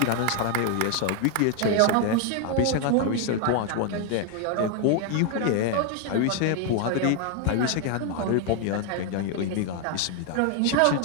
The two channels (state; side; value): different; both; correlation 0.01